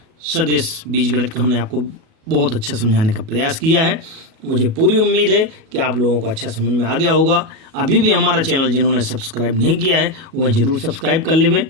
सदिश बीजगणित का हमने आपको बहुत अच्छा समझाने का प्रयास किया है। मुझे पूरी उम्मीद है कि आप लोगों को अच्छा समझ में आ गया होगा। अभी भी हमारा चैनल जिन्होंने सब्सक्राइब नहीं किया है वह ज़रूर सब्सक्राइब कर लेवें।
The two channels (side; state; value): left; late; 37 ms